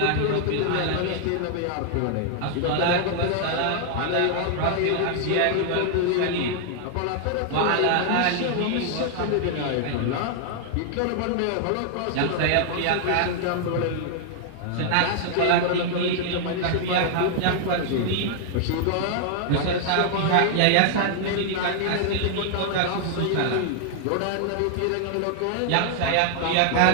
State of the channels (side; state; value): both; different; correlation 0.00